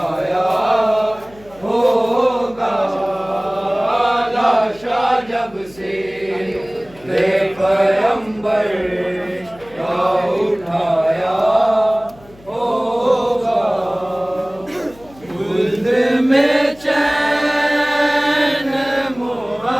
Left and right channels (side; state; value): left; noise; hum, 24 dB below the sound